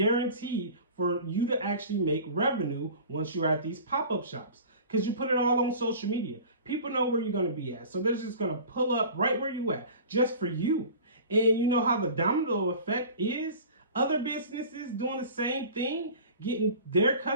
for you to actually make revenue once you're at these pop-up shops, because you put it all on social media. People know where you're going to be at, so they're just going to pull up right where you at just for you. And you know how the domino effect is? Other businesses doing the same thing, getting their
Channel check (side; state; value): both; inverted; correlation -0.40